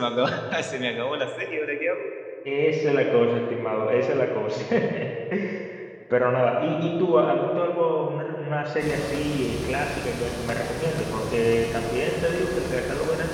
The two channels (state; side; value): identical; both; correlation 1.00